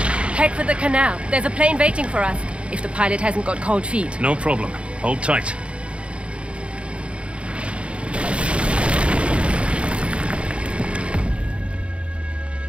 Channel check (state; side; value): late; left; 0.059 ms